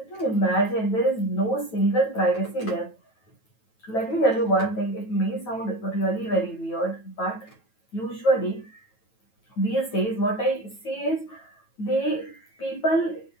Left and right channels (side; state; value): right; late; 9.2 ms